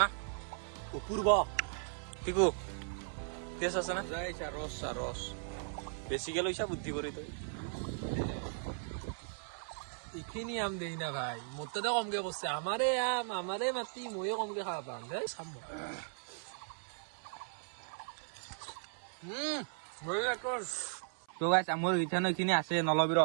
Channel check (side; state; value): left; silent; 53 dB below the other